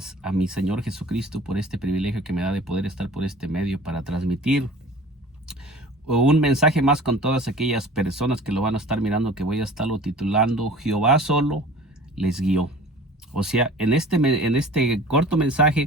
a mi Señor Jesucristo por este privilegio que me da de poder estar por este medio para transmitir un mensaje más con todas aquellas personas que lo van a estar mirando, que voy a estarlo titulando Jehová solo les guió. O sea, en este corto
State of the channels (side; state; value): both; normal; correlation 0.43